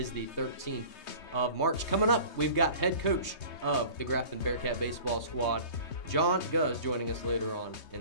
the 13th of March. Coming up, we've got head coach of the Grafton Bearcat baseball squad, John Gouzd, joining us later on in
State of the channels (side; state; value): right; late; 3.2 ms